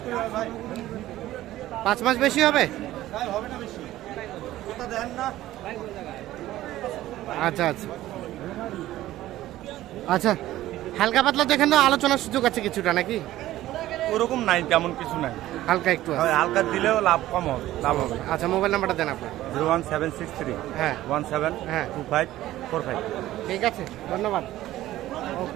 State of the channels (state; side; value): quieter; left; 14.9 dB